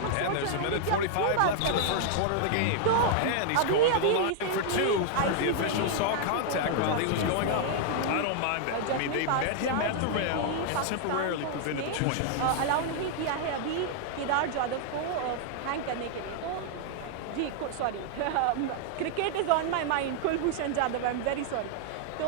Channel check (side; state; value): both; different; correlation -0.01